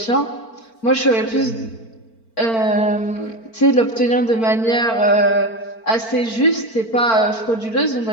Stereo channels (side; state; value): right; late; 4.4 ms